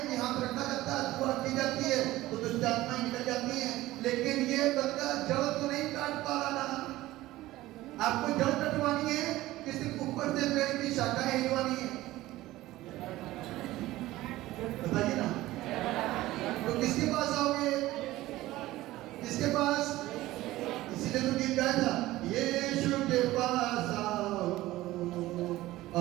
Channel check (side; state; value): left; quieter; 16.9 dB